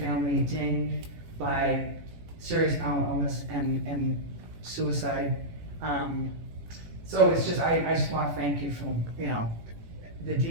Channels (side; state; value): left; late; 18 ms